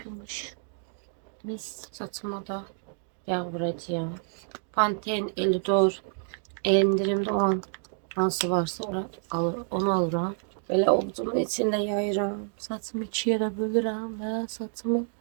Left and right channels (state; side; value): silent; left; 59 dB below the other